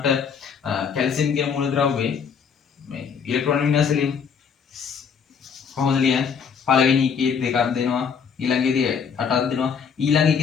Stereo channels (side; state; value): right; quieter; 6.6 dB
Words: කැල්සියම් කියන මූලද්‍රව්‍යයේ මේ ඉලෙක්ට්‍රෝන වින්‍යාසය ලියමු. කොහොමද ලියන්නේ? පළවෙනි එකේ දෙකක් දෙනවා, ඊළඟේදී 8ක් දෙනවා, ඊළඟ